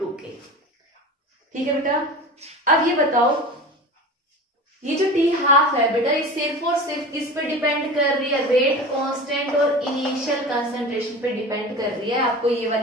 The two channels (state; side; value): normal; both; correlation 0.33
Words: ठीक है बेटा। अब ये बताओ ये जो टी हाफ है बेटा ये सिर्फ और सिर्फ किस पे डिपेंड कर रही है, रेट कांस्टेंट और इनिशियल कंसंट्रेशन पे डिपेंड कर रही है। आपको ये